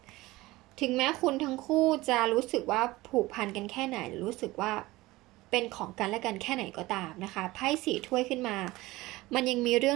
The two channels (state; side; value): quieter; left; 19.5 dB